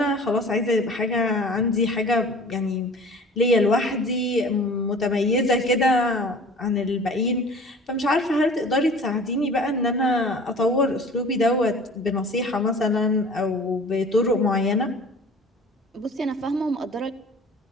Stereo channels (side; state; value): both; normal; correlation 0.44